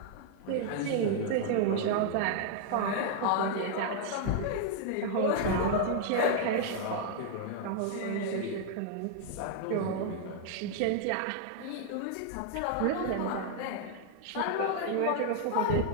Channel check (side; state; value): both; different; correlation 0.00